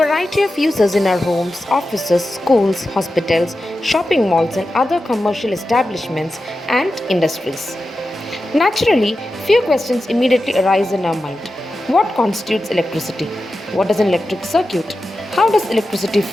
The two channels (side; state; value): both; normal; correlation 0.92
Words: variety of uses in our homes, offices, schools, hospitals, shopping malls, and other commercial establishments and industries. Naturally, few questions immediately arise in our mind. What constitutes electricity? What is an electric circuit? How does electricity